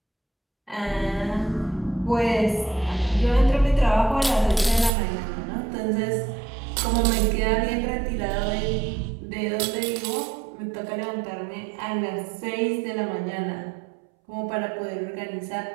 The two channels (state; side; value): drops out; left; at 4.9 s